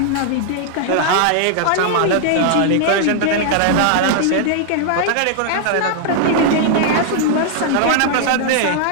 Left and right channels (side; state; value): both; different; correlation 0.00